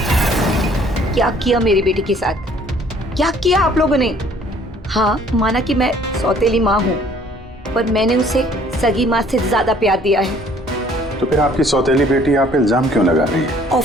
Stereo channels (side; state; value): both; normal; correlation 0.58